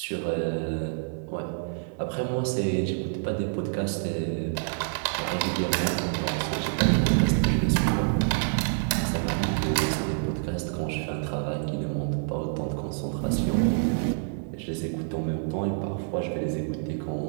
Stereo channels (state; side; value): silent; left; digital silence